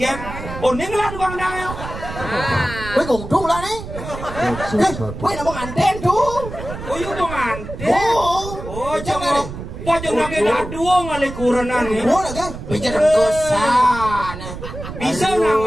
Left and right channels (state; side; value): noise; right; rumble, 10 dB below the sound